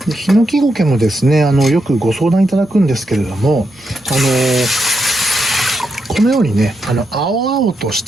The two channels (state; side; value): normal; both; correlation 0.83